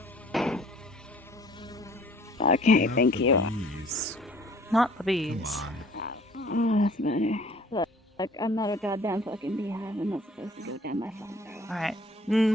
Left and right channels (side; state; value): both; normal; correlation 0.53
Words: Okay, thank you. Not the bees. Oh, that's better. Look, I'm not a goddamn fucking beehive. I'm not supposed to go down my phone throat. Alright.